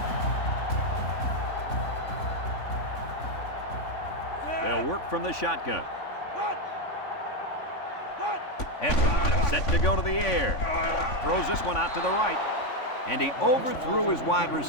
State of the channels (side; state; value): right; late; 3.5 ms